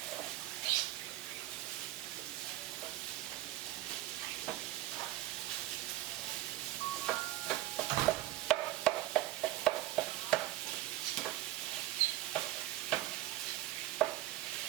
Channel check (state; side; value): quieter; left; 15.7 dB